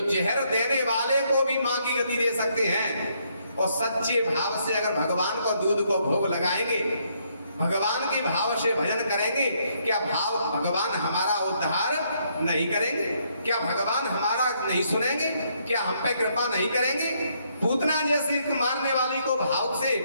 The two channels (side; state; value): both; inverted; correlation -0.72